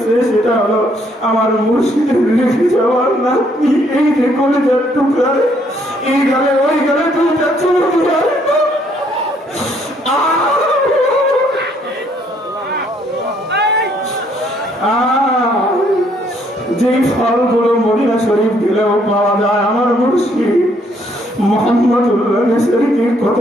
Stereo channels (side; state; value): both; normal; correlation 0.68